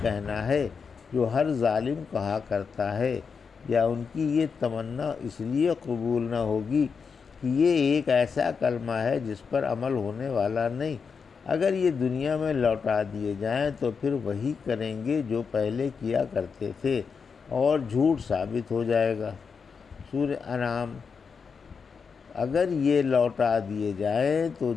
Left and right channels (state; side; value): quieter; right; 5.7 dB